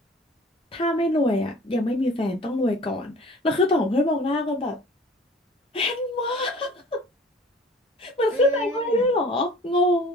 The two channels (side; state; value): both; normal; correlation 0.46